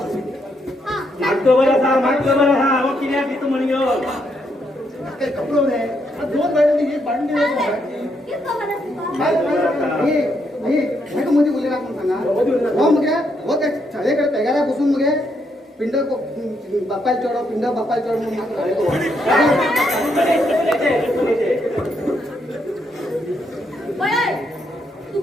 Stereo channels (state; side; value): normal; both; correlation 0.77